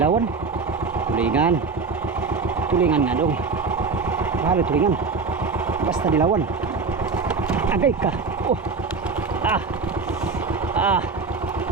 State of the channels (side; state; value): left; quieter; 4.6 dB